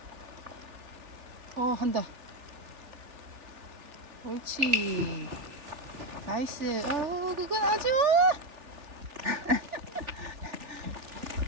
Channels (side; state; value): left; late; 3.4 ms